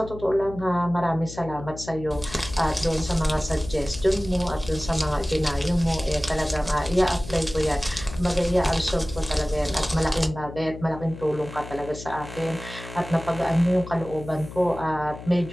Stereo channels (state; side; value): noise; left; hum, 13 dB below the sound